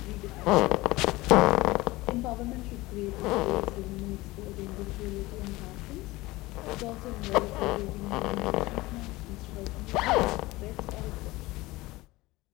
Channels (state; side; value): quieter; right; 20.2 dB